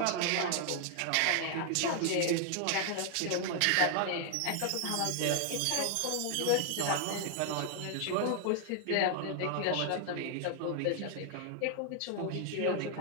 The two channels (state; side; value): different; both; correlation 0.00